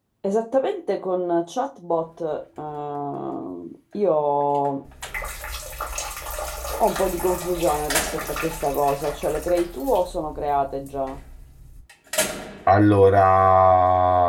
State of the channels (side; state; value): both; identical; correlation 1.00